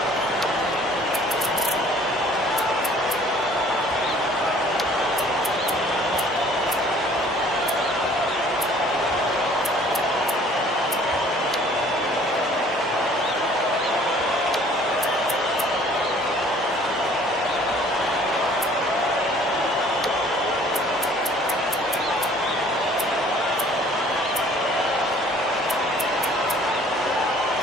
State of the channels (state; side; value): normal; both; correlation 0.54